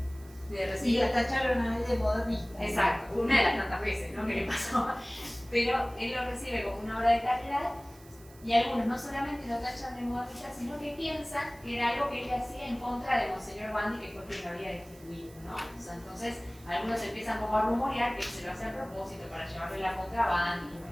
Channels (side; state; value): right; noise; hiss, 24 dB below the sound